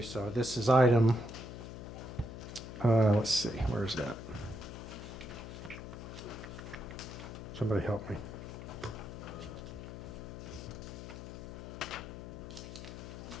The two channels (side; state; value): left; noise; hum, 9 dB below the sound